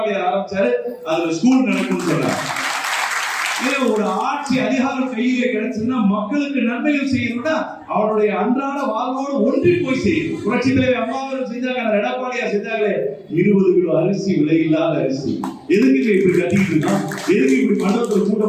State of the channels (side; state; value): both; identical; correlation 1.00